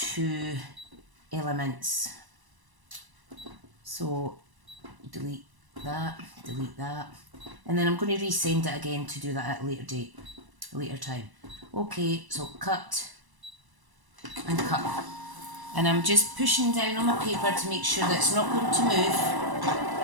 elements. So delete that, and then I'm going to resend it again to do that at a later time. Okay, so cut and cut. And I'm just pushing down on my paper to make sure that it's not going to move,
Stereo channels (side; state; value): left; late; 1.0 ms